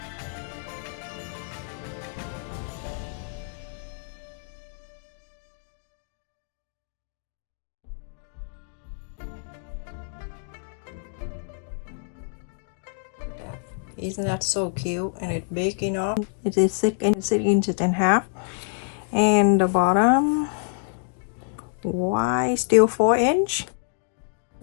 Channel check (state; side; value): silent; right; digital silence